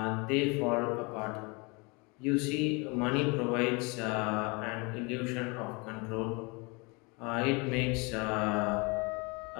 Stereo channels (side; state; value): right; quieter; 29.0 dB